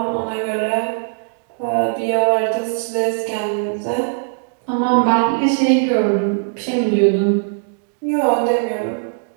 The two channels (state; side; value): silent; left; digital silence